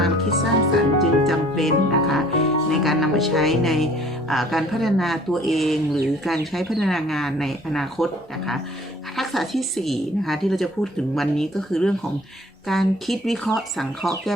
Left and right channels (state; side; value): normal; both; correlation 0.54